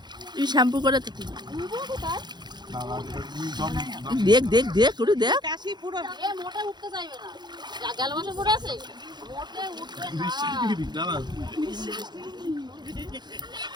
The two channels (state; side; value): late; left; 0.21 ms